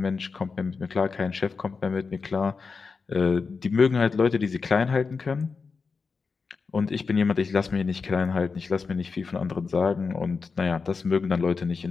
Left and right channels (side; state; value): right; quieter; 4.9 dB